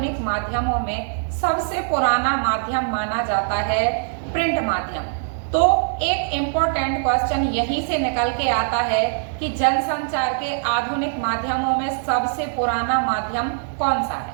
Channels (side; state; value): left; silent; digital silence